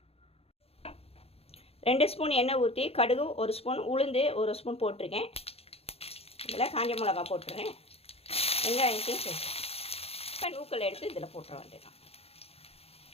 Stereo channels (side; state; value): right; late; 0.29 ms